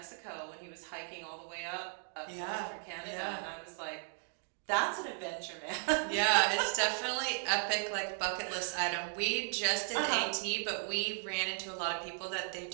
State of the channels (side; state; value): left; silent; 54 dB below the other